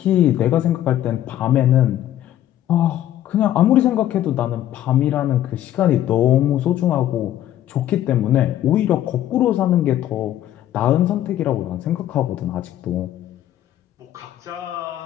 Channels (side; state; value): right; quieter; 12.3 dB